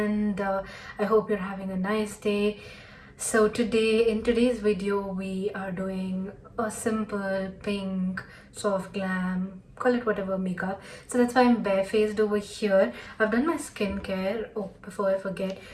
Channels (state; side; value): identical; both; correlation 1.00